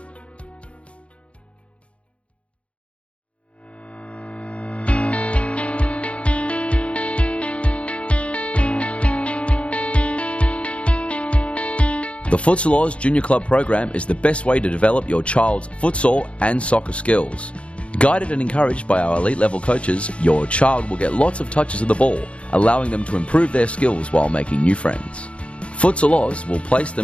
The Futsal Oz Junior Club program is the best way to develop your child's futsal and soccer skills. Guided and encouraged by our elite level coaches, your child will get lots of touches of the ball, allowing them to improve their skills while making new friends. Futsal Oz will place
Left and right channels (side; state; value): right; late; 0.061 ms